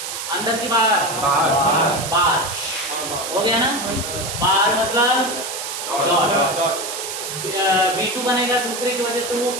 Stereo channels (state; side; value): noise; right; hiss, 6 dB below the sound